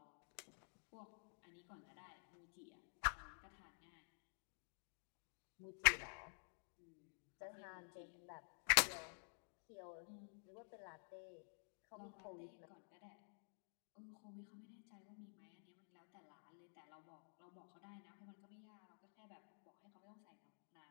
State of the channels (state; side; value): silent; right; digital silence